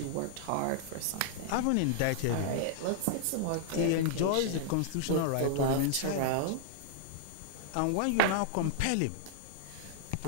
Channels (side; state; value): both; different; correlation -0.01